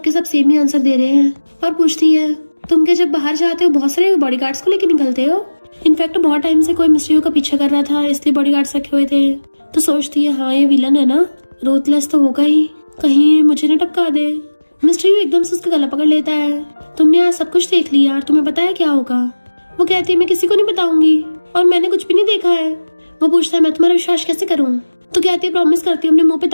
सब सेम ही आंसर दे रहे हैं और पूछती है तुम क्या जब बाहर जाते हो बहुत सारे बॉडीगार्ड्स को लेकर निकलते हो। इनफैक्ट बहुत टाइम से कोई मिस्टर यू का पीछा कर रहा था इसलिए बॉडीगार्ड्स रखे हुए थे। तो सोचती है हाँ ये विलन है ना, रूथलेस तो होगा ही, कहीं मुझे न टपका दे। मिस्टर यू एकदम से उसका गला पकड़ लेता है तुमने आज सब कुछ देख लिया और तुम्हें पता है क्या होगा। वो कहती है मैं किसी को नहीं बताऊंगी और मैंने कुछ भी नहीं देखा है। वो पूछता है मैं तुम्हारा विश्वास कैसे करूँ। तो कहती है प्रॉमिस करती हूँ अपने मुंह पे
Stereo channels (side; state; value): both; inverted; correlation -1.00